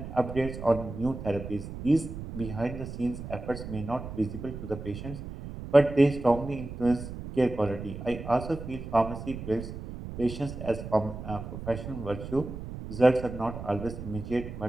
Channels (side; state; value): right; noise; rumble, 9 dB below the sound